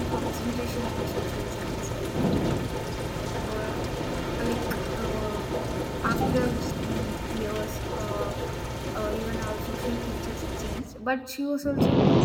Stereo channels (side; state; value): both; identical; correlation 1.00